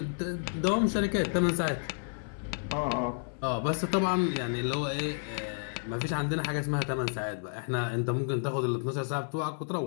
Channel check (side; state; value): right; silent; 57 dB below the other